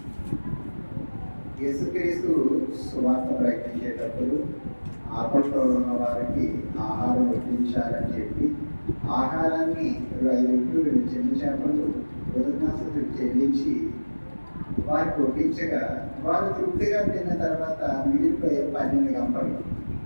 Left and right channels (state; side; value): inverted; both; correlation -1.00